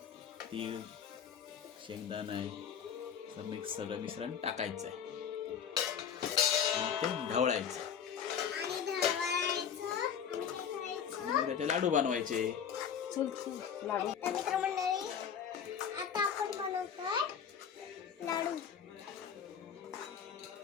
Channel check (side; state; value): right; quieter; 7.9 dB